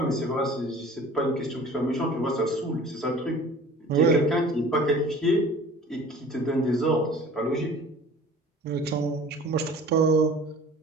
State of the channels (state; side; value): normal; both; correlation 0.45